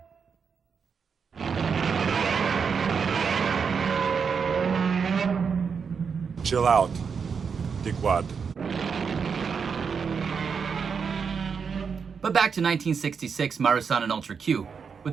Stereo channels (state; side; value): quieter; left; 6.1 dB